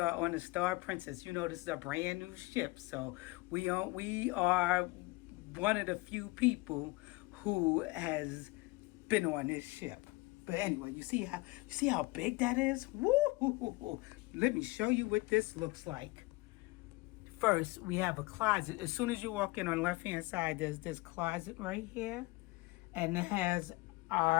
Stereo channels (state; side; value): quieter; right; 22.6 dB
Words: on the Star Princess. You know, this is a brand new ship, so we are one of the few people who has been on this ship. But anyway, you see how big that is? Woo! Let me show you what this looks like. First, we have a closet. As soon as you walk in on the left-hand side, there's this closet right here. And it has